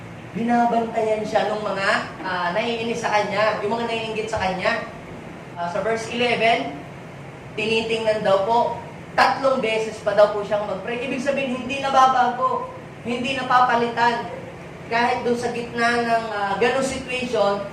Binabantayan siya ng mga naiinis sa kanya, yung mga naiinggit sa kanya. Sa verse 11, tinitingnan daw po, 3 beses pa daw po siyang mag-pray. Ibig sabihin, hindi nababago, hindi napapalitan. Kahit doon sa gitna ng ganong situation,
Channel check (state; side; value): identical; both; correlation 1.00